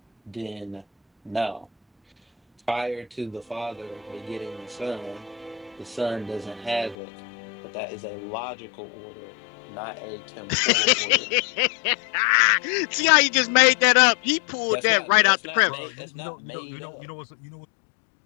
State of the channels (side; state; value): right; drops out; at 7.0 s